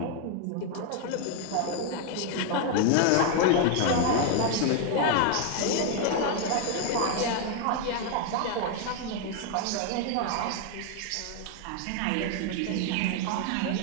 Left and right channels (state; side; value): different; both; correlation 0.01